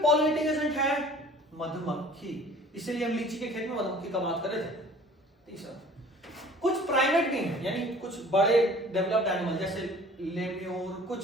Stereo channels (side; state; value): both; normal; correlation 0.49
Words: पॉलिनेटिंग एजेंट है मधुमक्खी, इसीलिए हम लीची के खेत में मधुमक्खी का बात कर रहे थे। तीसरा, कुछ प्राइमेट भी हैं, यानी कुछ बड़े डेवलप्ड एनिमल जैसे लेम्यूर,